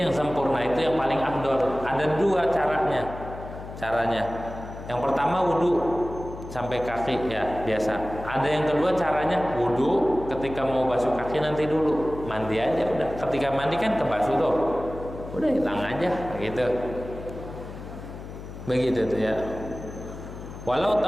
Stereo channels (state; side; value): noise; left; hum, 12 dB below the sound